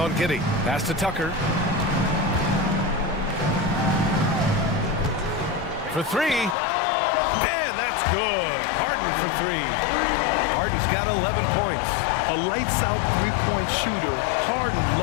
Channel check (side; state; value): right; drops out; at 6.6 s